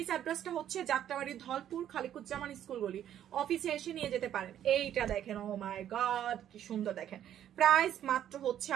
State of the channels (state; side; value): quieter; left; 10.7 dB